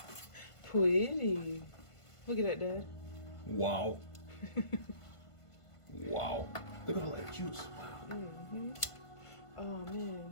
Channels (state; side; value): late; right; 1.5 ms